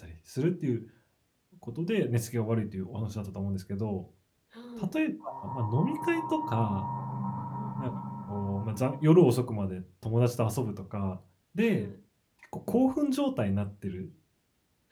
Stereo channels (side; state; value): both; identical; correlation 1.00